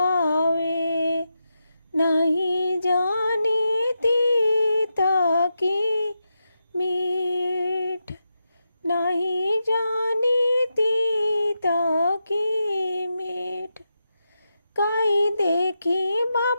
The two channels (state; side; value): inverted; both; correlation -0.87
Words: नहीं जानीती ताकि मीठ नहीं जानीती ताकि मीठ काई देखी